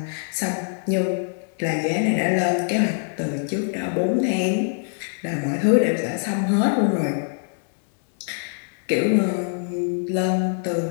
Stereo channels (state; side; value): silent; right; 63 dB below the other